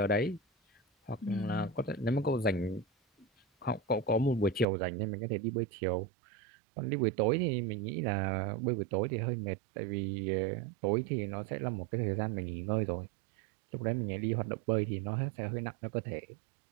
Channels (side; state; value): left; drops out; at 4.7 s